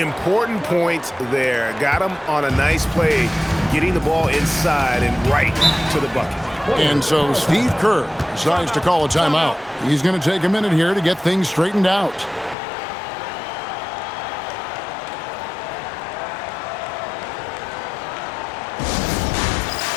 points there. Got him on a nice play, getting the ball inside and right to the bucket. And so Steve Kerr decides to call a timeout. He's going to take a minute here to get things straightened out.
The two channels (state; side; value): drops out; right; at 12.6 s